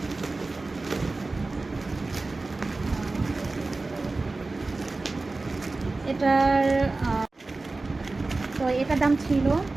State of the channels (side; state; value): left; quieter; 3.4 dB